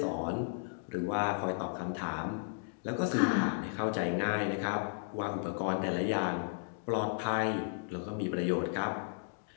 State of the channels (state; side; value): silent; right; digital silence